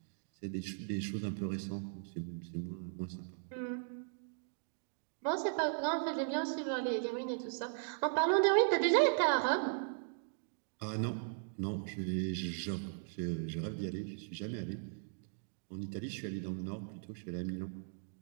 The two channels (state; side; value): silent; left; digital silence